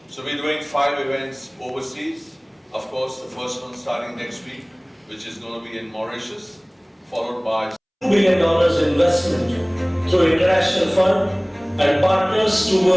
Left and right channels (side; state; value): both; identical; correlation 1.00